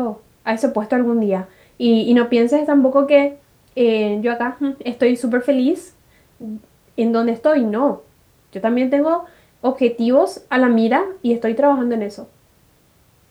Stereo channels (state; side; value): identical; both; correlation 1.00